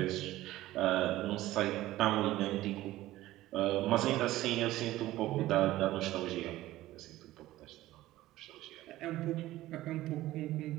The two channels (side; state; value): left; quieter; 16.0 dB